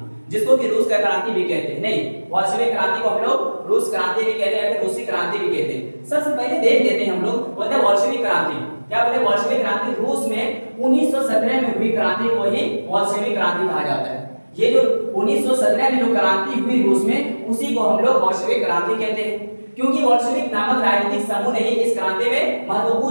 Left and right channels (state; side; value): inverted; both; correlation -1.00